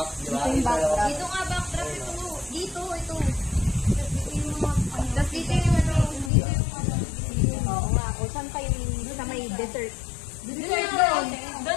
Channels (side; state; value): right; drops out; at 6.3 s